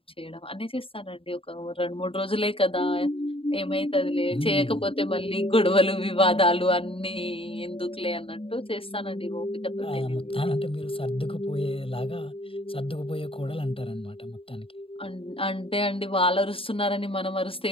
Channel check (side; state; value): right; late; 0.27 ms